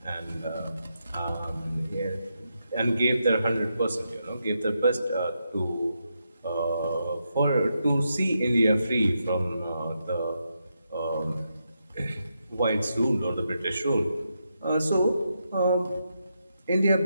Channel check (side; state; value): both; inverted; correlation -0.84